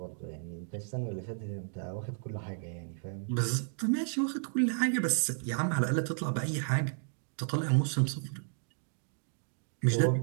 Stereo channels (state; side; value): silent; left; 56 dB below the other